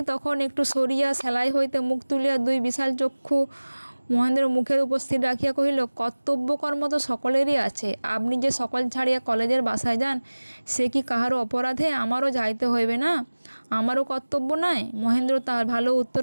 তখন একটু সরিয়া সেলাই হইতে মুখ তুলিয়া দুই বিশাল চক্ষু মহেন্দ্র মুখের উপর স্থির রাখিয়া কহিল, কর্তব্যকর্ম তো সকলেরই আছে। আপনি যে সকল ছাড়িয়া কলেজের বাসায় যান, সে কি কাহারও অপরাধে? আমারও যাইতে হইবে না? আমারও কর্তব্য নাই? মহেন্দ্র তাহার ভালো উত্তর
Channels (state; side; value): inverted; both; correlation -1.00